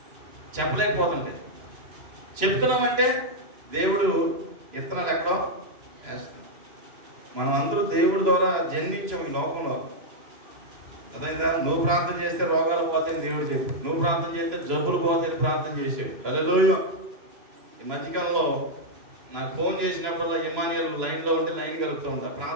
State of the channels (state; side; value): late; left; 2.9 ms